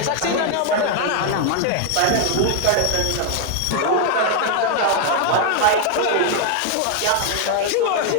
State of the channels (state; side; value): different; both; correlation 0.00